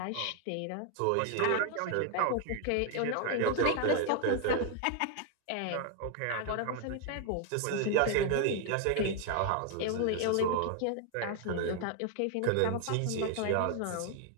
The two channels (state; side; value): different; both; correlation 0.00